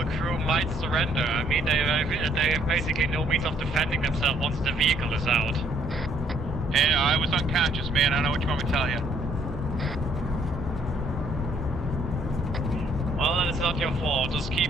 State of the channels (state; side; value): normal; both; correlation 0.66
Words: crew might surrender. I mean, they have basically no means of defending themselves once the vehicle is out. Hey, I was unconscious, man. I don't know what you want me to tell you. Well, then it's not your fault. Just